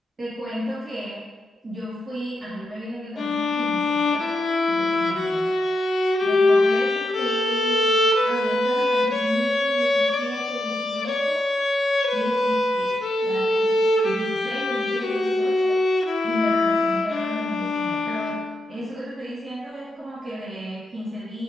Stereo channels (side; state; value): both; normal; correlation 0.85